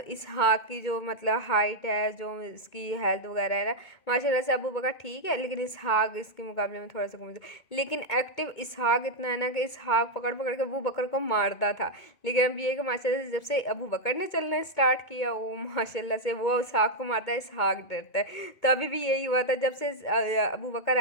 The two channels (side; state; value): right; late; 2.2 ms